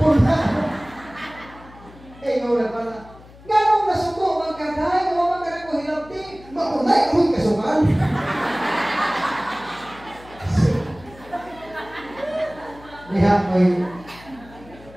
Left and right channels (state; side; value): noise; left; hum, 21 dB below the sound